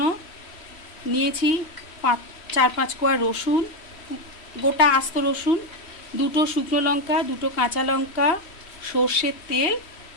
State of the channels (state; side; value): late; right; 3.1 ms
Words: নিয়েছি 4-5 কোয়া রসুন, গোটা আস্ত রসুন, দুটো শুকনো লঙ্কা, দুটো কাঁচা লঙ্কা, সর্ষের তেল